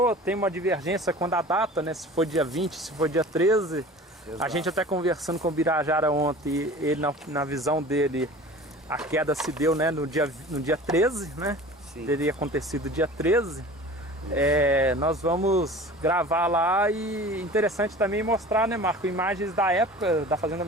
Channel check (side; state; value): both; normal; correlation 0.41